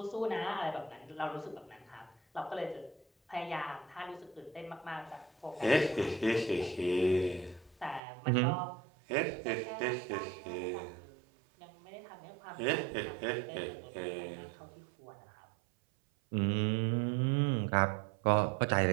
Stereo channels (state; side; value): drops out; left; at 8.0 s